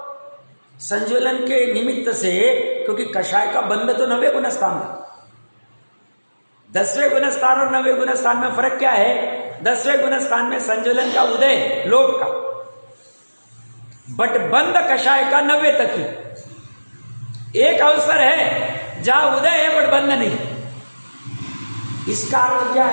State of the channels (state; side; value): inverted; both; correlation -1.00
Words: संज्वलन के निमित्त से, क्योंकि कषाय का बंध तो 9वें गुण स्थान था। 10वें गुण स्थान और 9वें गुण स्थान में फर्क क्या है? 10वें गुण स्थान में संज्वलन का उदय लोक का, बट बंद कषाय का 90 तक ही। एक अवसर है जहां उदय है बट बंद नहीं। इसका अर्थ क्या